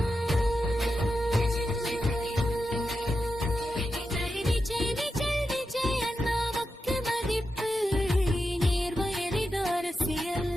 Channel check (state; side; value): normal; both; correlation 0.88